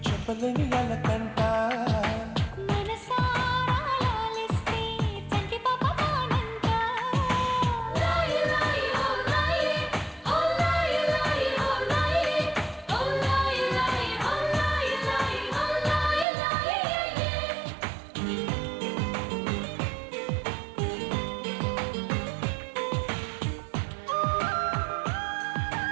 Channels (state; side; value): drops out; left; at 16.2 s